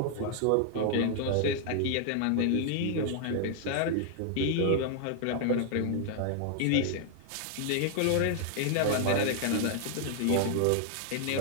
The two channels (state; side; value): different; both; correlation 0.00